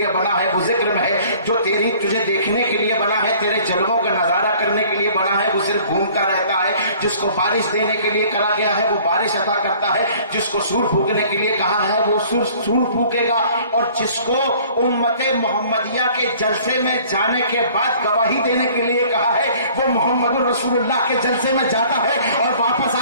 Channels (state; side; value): inverted; both; correlation -0.53